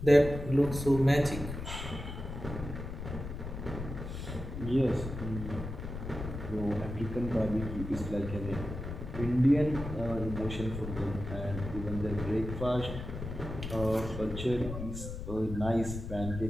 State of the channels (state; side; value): noise; left; rumble, 7 dB below the sound